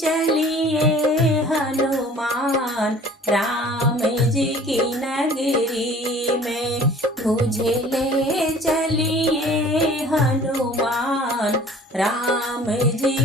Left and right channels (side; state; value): both; normal; correlation 0.49